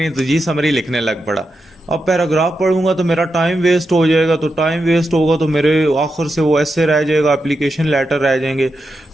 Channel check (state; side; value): normal; both; correlation 0.87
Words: तो जी समरी लिखने लग पड़ा। अब पैराग्राफ पढ़ूंगा तो मेरा टाइम वेस्ट हो जाएगा, तो टाइम वेस्ट होगा तो मेरे आखिर से वो ऐसे रह जाएगा, एप्लीकेशन लेटर रह जाएंगे।